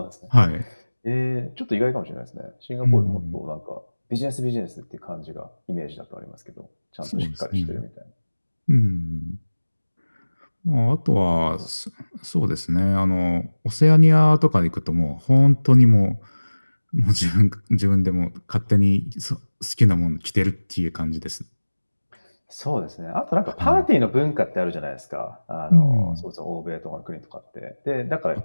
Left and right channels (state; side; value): inverted; both; correlation -1.00